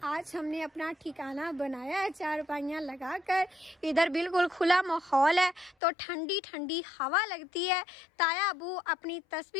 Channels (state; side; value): drops out; right; at 5.8 s